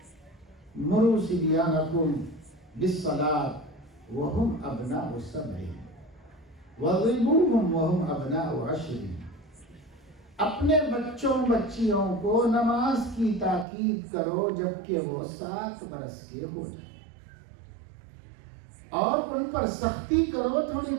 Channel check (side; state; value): left; drops out; at 13.7 s